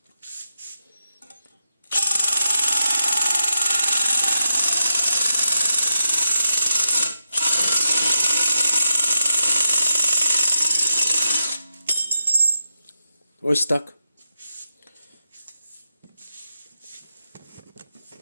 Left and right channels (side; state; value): both; inverted; correlation -0.85